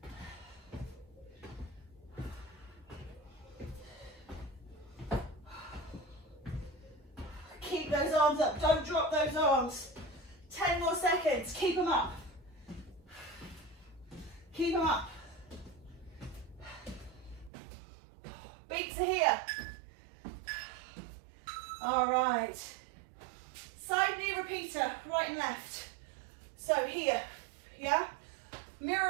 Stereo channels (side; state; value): left; drops out; at 17.5 s